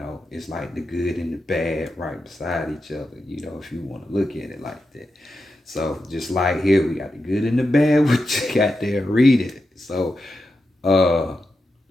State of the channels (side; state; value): both; normal; correlation 0.88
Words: it's like the good and the bad right beside each other, you know, if you want to look at it like that. So just like here, we got the good and the bad, which you got there, read it. So